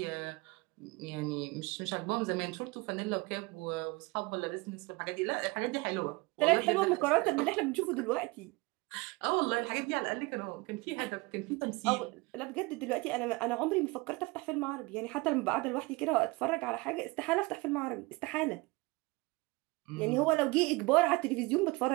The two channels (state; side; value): quieter; left; 24.1 dB